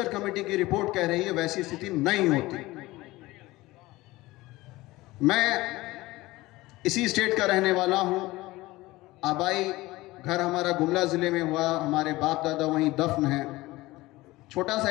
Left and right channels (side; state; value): right; quieter; 19.3 dB